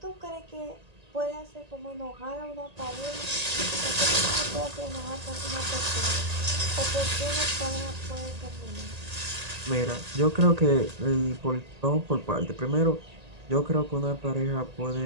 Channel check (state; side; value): late; left; 1.8 ms